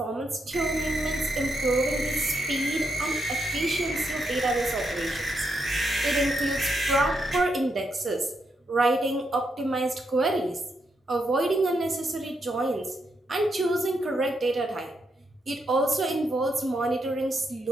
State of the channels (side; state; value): both; normal; correlation 0.81